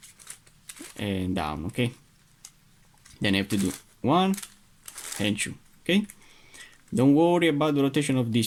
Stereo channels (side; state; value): both; identical; correlation 1.00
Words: and down, okay, then I have to do 1 and 2, okay, don't worry about the rotation of